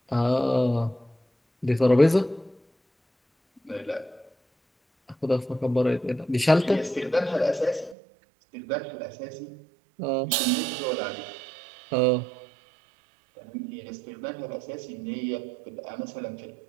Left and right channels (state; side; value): drops out; left; at 8.0 s